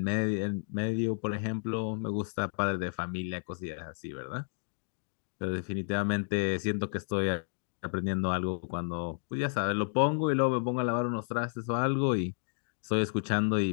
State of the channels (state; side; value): silent; right; digital silence